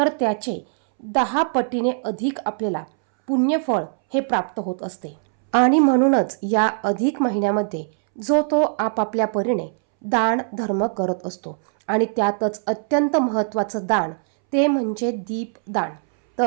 त्याचे 10 पटीने अधिक आपल्याला पुण्यफळ हे प्राप्त होत असते. आणि म्हणूनच या अधिक महिन्यामध्ये जो तो आपापल्या परीने दान धर्म करत असतो आणि त्यातच अत्यंत महत्त्वाचं दान ते म्हणजे दीपदान.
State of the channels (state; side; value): silent; left; 65 dB below the other